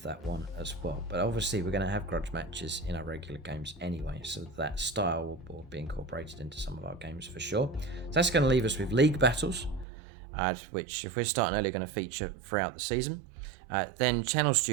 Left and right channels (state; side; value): drops out; left; at 9.9 s